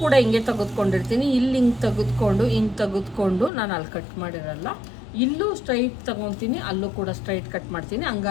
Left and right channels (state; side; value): drops out; right; at 3.5 s